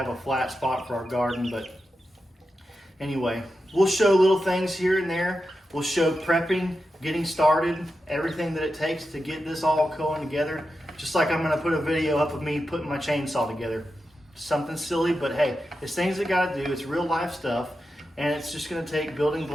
a flat spot for our garden. But anyway, we'll show little things here and there. We'll show prepping, getting started, everything that it takes to get this all going together. Just like I'm gonna put a video up of me putting my chainsaw together. Something silly, but hey, it's things that gotta do. It's real life stuff, and it's just gonna take building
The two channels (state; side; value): normal; both; correlation 0.90